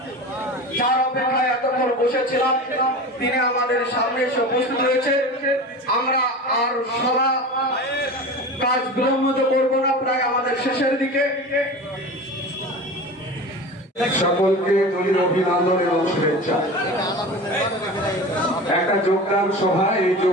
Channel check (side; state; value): both; normal; correlation 0.32